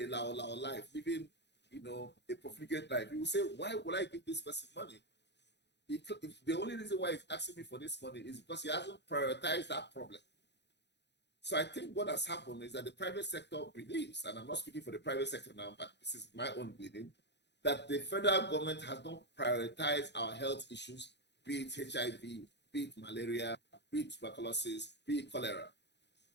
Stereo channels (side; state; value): right; late; 0.50 ms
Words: lao life, living, a profligate life. You will say, why would I give this person money? The only reason why he's asking me for this money is because he hasn't prioritized that problem. So I think what has happened is that the private sector believes, and I'm not speaking for the private sector now, but this is my own believing, that the federal government has not prioritized our health issues, be it HIV, be it malaria, be it tuberculosis, be it cholera.